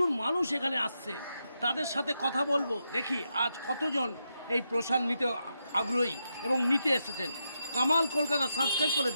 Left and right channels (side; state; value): both; inverted; correlation -0.85